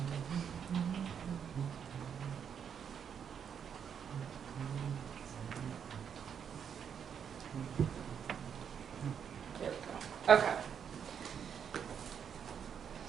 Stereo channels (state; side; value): quieter; left; 7.7 dB